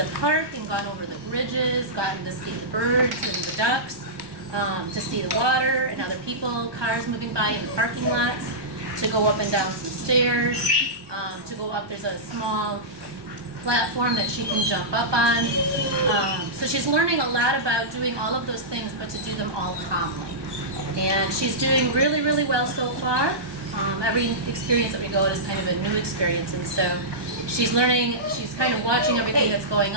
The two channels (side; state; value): left; late; 1.2 ms